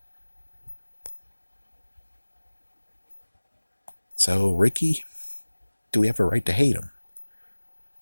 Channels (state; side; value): inverted; both; correlation -1.00